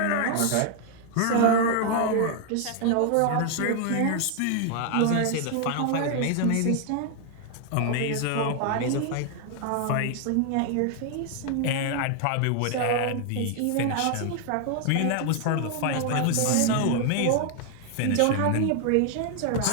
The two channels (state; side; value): different; both; correlation 0.00